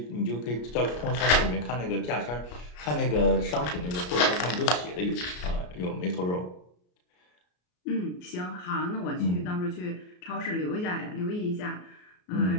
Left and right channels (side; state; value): right; late; 33 ms